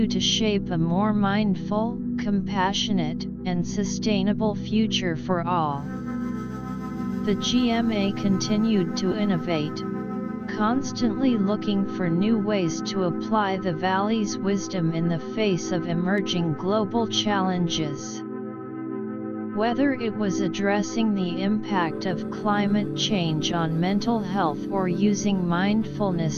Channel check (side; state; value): both; identical; correlation 1.00